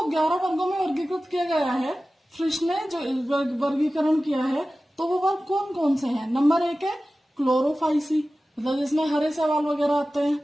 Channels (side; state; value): both; normal; correlation 0.96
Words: 11 वर्गों में वर्गीकृत किया गया है। फ्रिश ने जो वर्गीकरण किया है तो वो वर्ग कौन कौन से हैं? नंबर 1 है क्लोरोफाइसी, मतलब जिसमें हरे शैवाल वगैरह आते